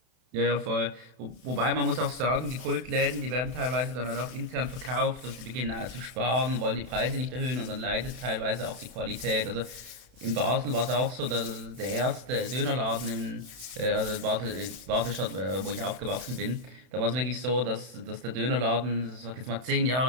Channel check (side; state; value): left; late; 31 ms